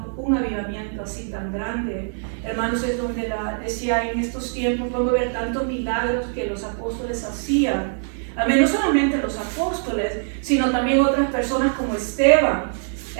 un avivamiento así tan grande. Hermanos, es donde decía, en estos tiempos podemos ver tantos milagros que los apóstoles hacían. Amén, no solamente los apóstoles, sino también otras personas como Esteban,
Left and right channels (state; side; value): silent; left; 63 dB below the other